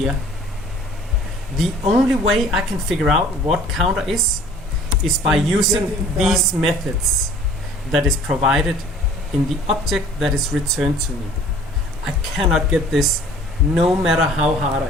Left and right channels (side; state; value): both; normal; correlation 0.51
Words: The only way I can figure out what counter is by using these methods that is provided in the object that is returned to me. I cannot get this no matter how hard